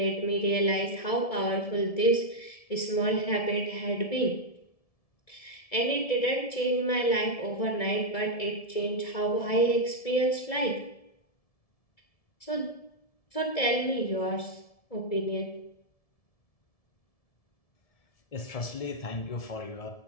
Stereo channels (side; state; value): right; late; 1.7 ms